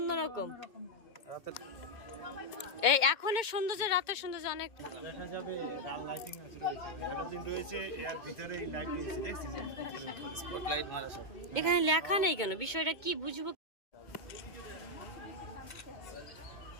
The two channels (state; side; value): late; right; 2.2 ms